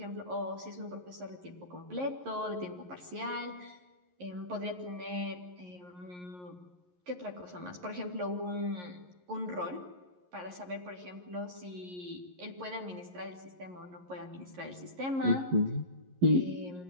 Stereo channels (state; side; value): late; left; 11 ms